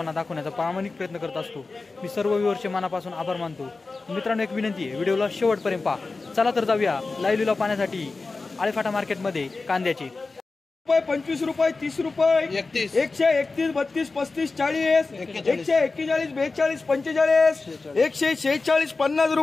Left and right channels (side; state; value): right; quieter; 3.8 dB